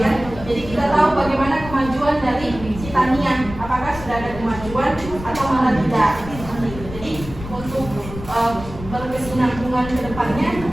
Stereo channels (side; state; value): left; noise; rumble, 12 dB below the sound